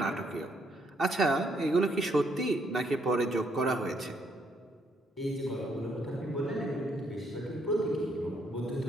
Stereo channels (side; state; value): both; normal; correlation 0.72